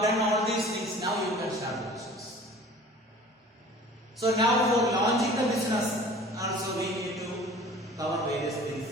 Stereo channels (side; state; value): both; normal; correlation 0.45